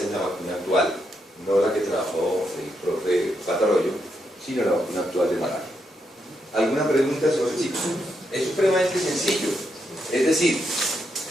es la vacuna actual, no la que trabajó el profe Patarroyo, sino la vacuna actual de malaria. ¿Alguna pregunta sobre sí? Es supremamente sencillo. Es decir,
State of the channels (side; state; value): both; normal; correlation 0.81